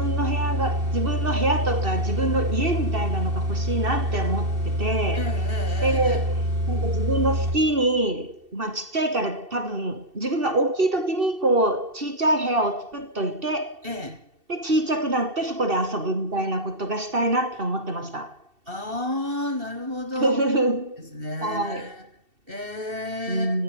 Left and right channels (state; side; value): late; left; 2.7 ms